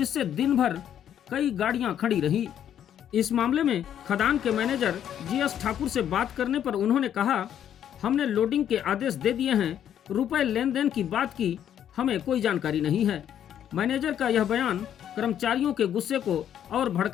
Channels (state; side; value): quieter; right; 9.9 dB